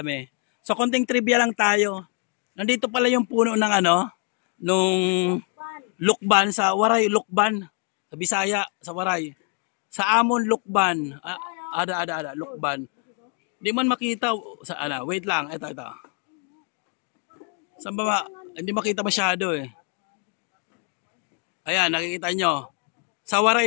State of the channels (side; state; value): right; quieter; 37.5 dB